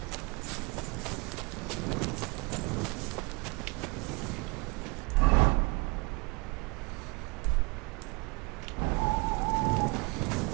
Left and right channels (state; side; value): quieter; left; 27.9 dB